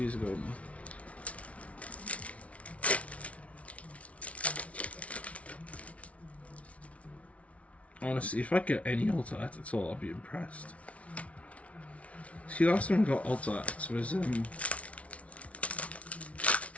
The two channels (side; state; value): right; late; 0.064 ms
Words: ago now. Honestly, if I get any Alta Art at all, I'll be impressed. See, last time I got Alta Arts was